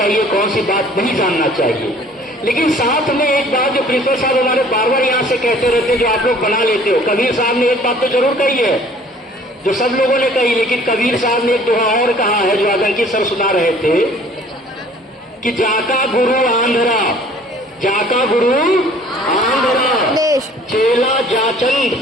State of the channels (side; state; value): both; normal; correlation 0.53